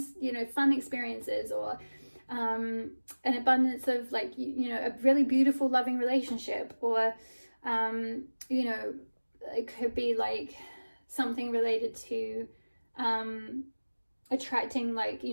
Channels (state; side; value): inverted; both; correlation -1.00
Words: you know, fun experiences, or an abundance of like, you know, a really beautiful loving relationship, or you know, it could be like something related to attracting, like, you